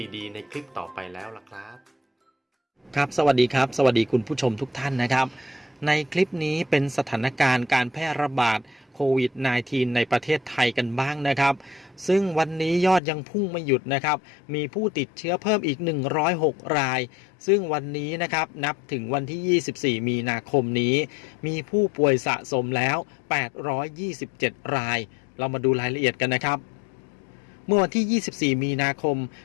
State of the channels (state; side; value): drops out; right; at 13.0 s